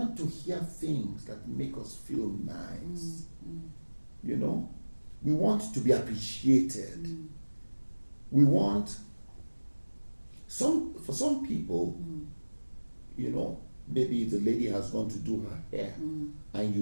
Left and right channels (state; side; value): inverted; both; correlation -1.00